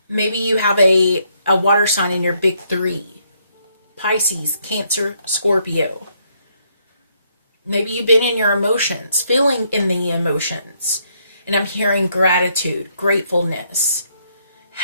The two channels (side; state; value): both; inverted; correlation -0.73